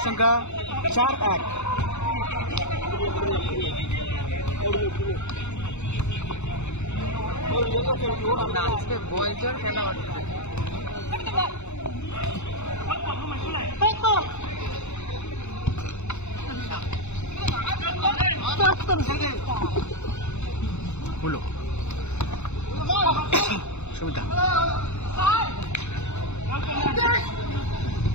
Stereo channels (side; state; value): right; late; 0.82 ms